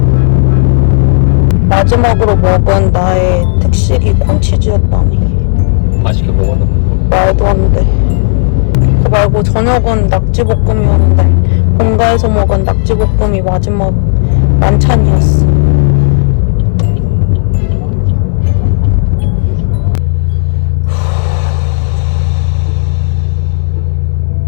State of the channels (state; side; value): silent; right; digital silence